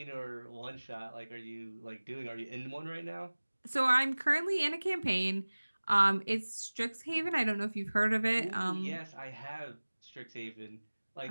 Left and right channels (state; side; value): inverted; both; correlation -1.00